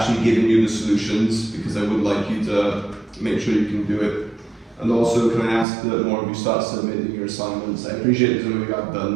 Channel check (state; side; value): drops out; left; at 5.7 s